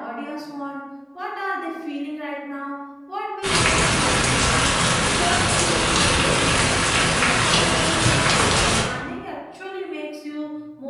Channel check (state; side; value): identical; both; correlation 1.00